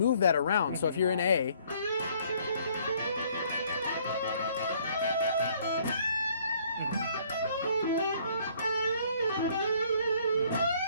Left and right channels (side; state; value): both; inverted; correlation -0.61